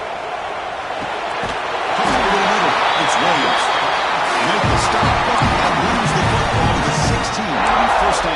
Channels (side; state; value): both; identical; correlation 1.00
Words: Over the middle. It's Williams. Make the stop and moves the football to the 16. It'll be 1st